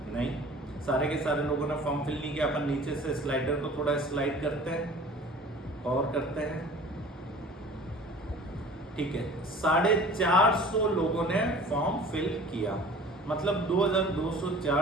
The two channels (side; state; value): both; normal; correlation 0.45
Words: नहीं, सारे के सारे लोगों ने फॉर्म फिल नहीं किया। अपन नीचे से स्लाइडर को थोड़ा स्लाइड करते हैं और करते हैं, ठीक है। 450 लोगों ने फॉर्म फिल किया, मतलब